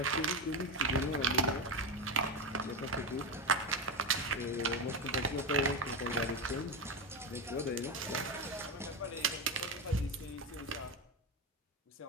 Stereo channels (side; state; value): both; normal; correlation 0.14